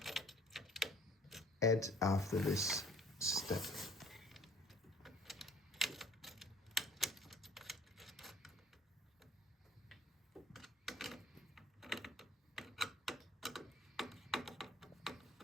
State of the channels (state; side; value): normal; both; correlation 0.55